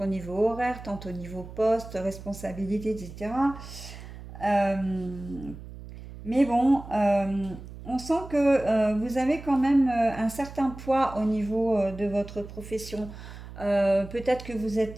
au niveau horaire, tant au niveau poste, responsabilité, etc. Euh, mais bon, on sent que vous avez quand même un certain poids au niveau de votre profession. Peut-être que vous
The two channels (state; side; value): noise; right; hum, 14 dB below the sound